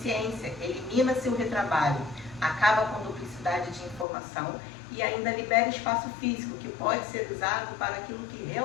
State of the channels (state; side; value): drops out; right; at 4.0 s